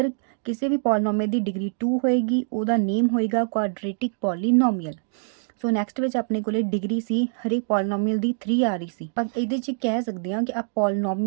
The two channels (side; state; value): left; silent; digital silence